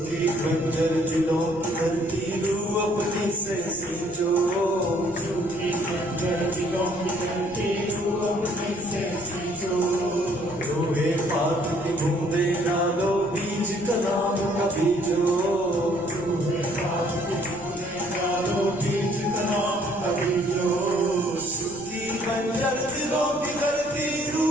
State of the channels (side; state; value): left; noise; rumble, 22 dB below the sound